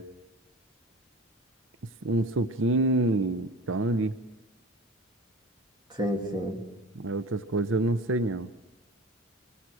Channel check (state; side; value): normal; both; correlation 0.36